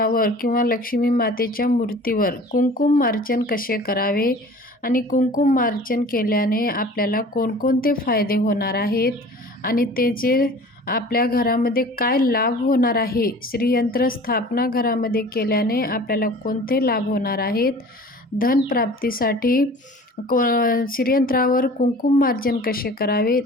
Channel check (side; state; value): both; normal; correlation 0.44